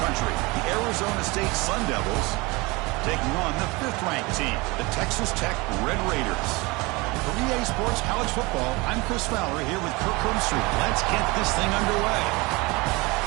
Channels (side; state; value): left; quieter; 24.6 dB